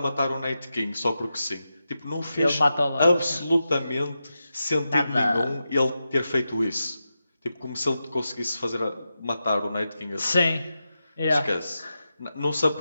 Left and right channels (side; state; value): both; inverted; correlation -0.90